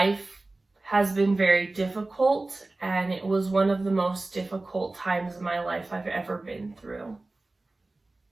has been very difficult, and it was one of the most difficult times in my life I've ever been through.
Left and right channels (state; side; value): quieter; left; 3.1 dB